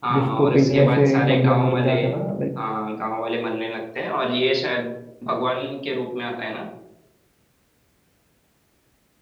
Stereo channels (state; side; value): identical; both; correlation 1.00